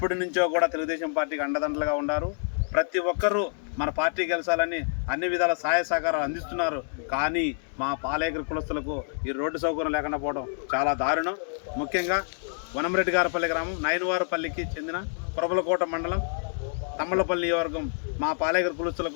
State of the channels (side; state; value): right; silent; digital silence